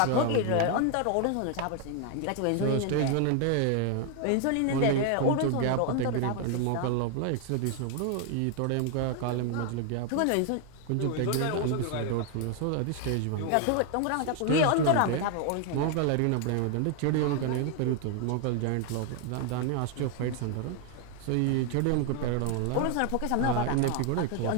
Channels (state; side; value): different; both; correlation 0.00